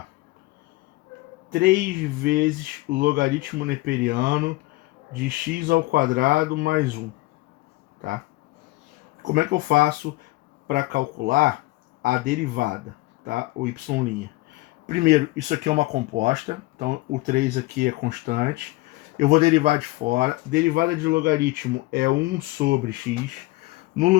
3 vezes o logaritmo neperiano de x ao quadrado mais 1, tá? Como é que eu faço para calcular a derivada, tá? O y'. Primeiro, isso aqui é uma composta, então o 3 aqui é constante. Eu vou derivar de fora. Derivada de logaritmo é 1 sobre x. No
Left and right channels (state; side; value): quieter; right; 20.6 dB